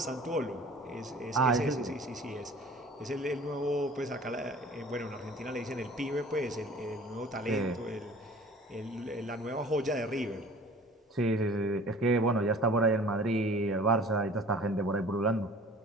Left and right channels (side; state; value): both; normal; correlation 0.46